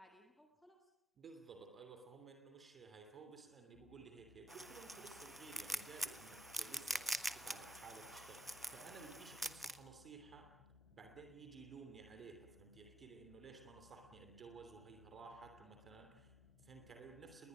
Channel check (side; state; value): both; normal; correlation 0.76